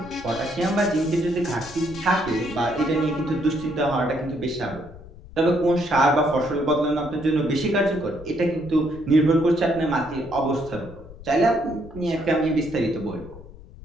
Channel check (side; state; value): left; noise; rumble, 17 dB below the sound